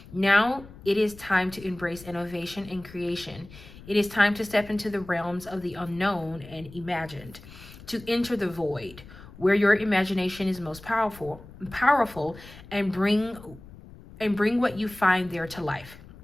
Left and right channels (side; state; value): left; noise; rumble, 19 dB below the sound